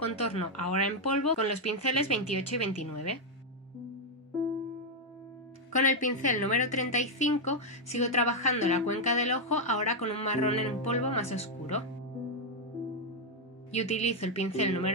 ahora en polvo con los pinceles 28 y 29. Con el pincel número 35 sigo trabajando la cuenca del ojo ahora con un marrón en polvo más oscuro. Y utilizo el pincel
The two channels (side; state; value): both; normal; correlation 0.01